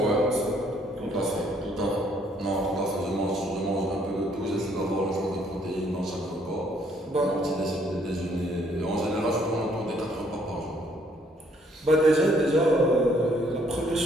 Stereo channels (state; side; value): normal; both; correlation 0.66